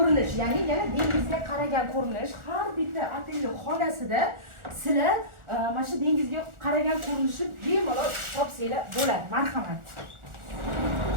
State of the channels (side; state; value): left; late; 1.4 ms